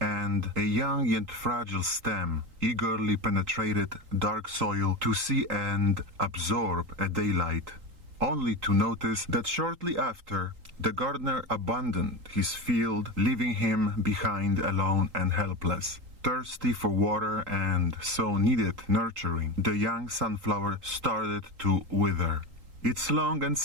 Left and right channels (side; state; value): left; late; 3.8 ms